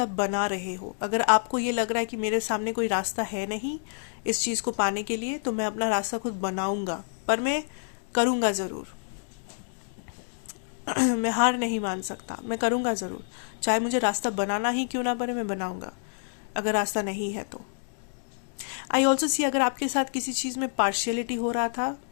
बना रहे हो। अगर आपको ये लग रहा है कि मेरे सामने कोई रास्ता है नहीं इस चीज़ को पाने के लिए, तो मैं अपना रास्ता खुद बनाऊँगा, पर मैं करूँगा ज़रूर। मैं हार नहीं मान सकता, मैं करूँगा ज़रूर, चाहे मुझे रास्ता बनाना ही क्यों ना पड़े, मैं बनाऊँगा। अगर रास्ता नहीं है तो आई ऑल्सो सी, अगर आपके साथ किसी चीज़ में पार्शियलिटी हो रहा था,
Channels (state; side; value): silent; right; digital silence